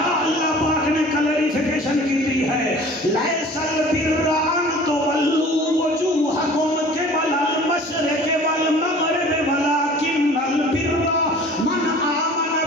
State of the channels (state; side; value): normal; both; correlation 0.46